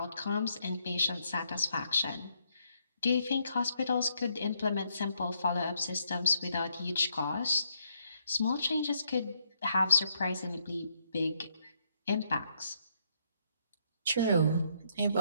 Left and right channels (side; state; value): both; inverted; correlation -0.74